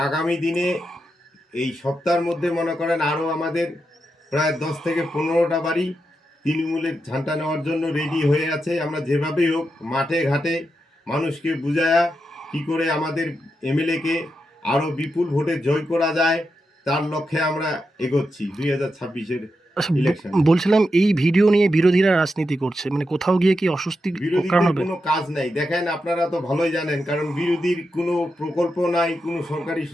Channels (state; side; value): normal; both; correlation 0.86